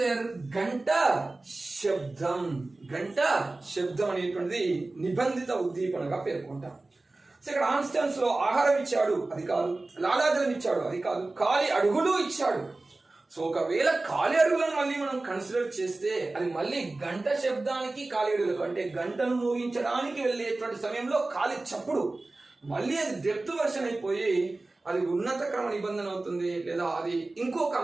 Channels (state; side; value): quieter; left; 3.1 dB